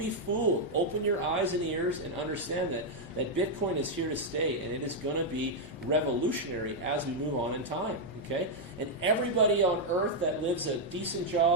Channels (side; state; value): both; normal; correlation -0.01